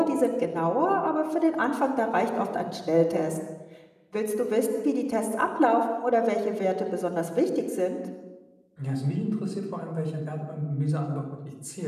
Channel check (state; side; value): identical; both; correlation 1.00